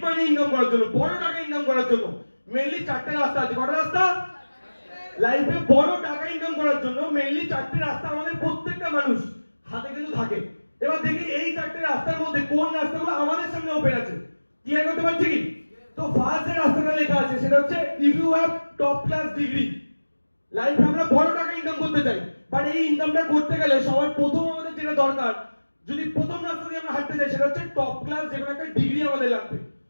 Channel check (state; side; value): inverted; both; correlation -1.00